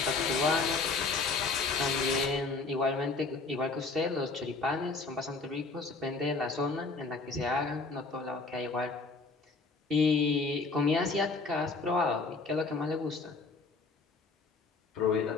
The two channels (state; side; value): quieter; right; 3.9 dB